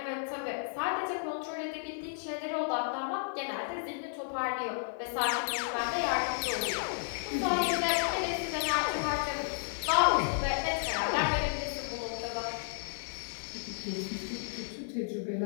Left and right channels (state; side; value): silent; right; digital silence